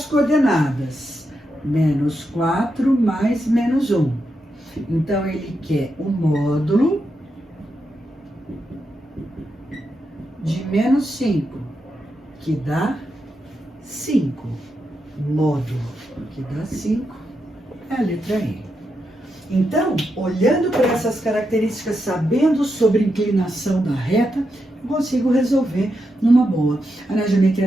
coordenadas. Menos 4 mais menos 1. Então, ele quer o módulo de menos 5, que dá 5. Módulo, que dá 5, é a letra E. Então, olhando para essas características, sabendo sobre inclinação da reta, eu consigo resolver numa boa. Na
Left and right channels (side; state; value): both; normal; correlation 0.85